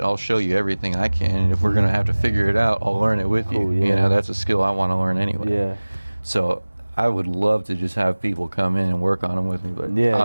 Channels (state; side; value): inverted; both; correlation -1.00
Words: I'll show you everything I can. And if we're going to have to figure it out, I'll learn it with you. Yeah. You know, that's a skill I want to learn anyway. Yeah. So I would love to just have people come in and work on them with me, but Yeah,